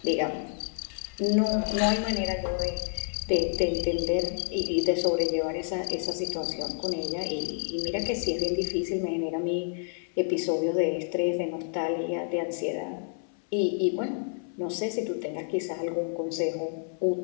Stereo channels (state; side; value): silent; right; 59 dB below the other